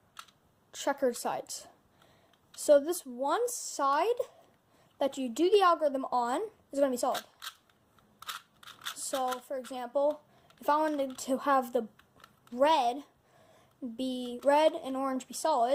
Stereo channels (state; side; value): identical; both; correlation 1.00